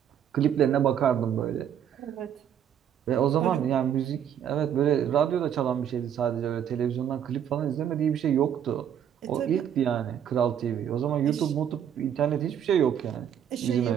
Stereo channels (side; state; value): left; quieter; 9.2 dB